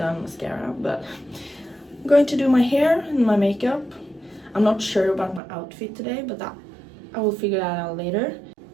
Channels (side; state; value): left; drops out; at 5.4 s